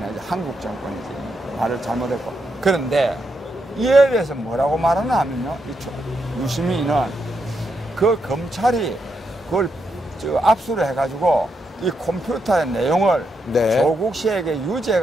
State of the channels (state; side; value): normal; both; correlation 0.81